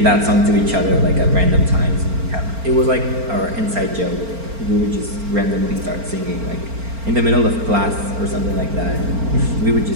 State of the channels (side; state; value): left; late; 4.4 ms